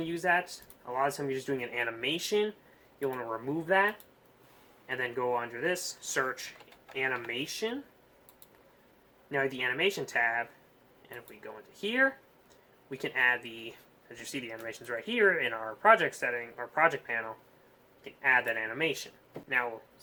to use that. A lot of times you're just doing an animation. You'll want to remove that. And then go under this, search Animation. Now the Animation tab. And if we go into here, we can add the, as you see the animations right here in our project setting, our project panel, we can add that animation. Now,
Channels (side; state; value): both; identical; correlation 1.00